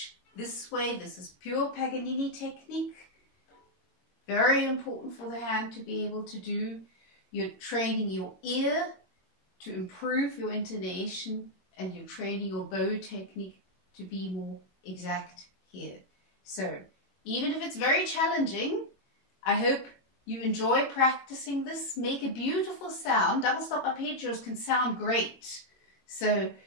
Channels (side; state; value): right; late; 22 ms